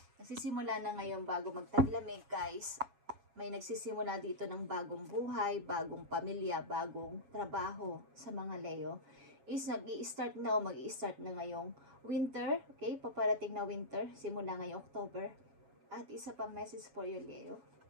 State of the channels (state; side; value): late; left; 7.2 ms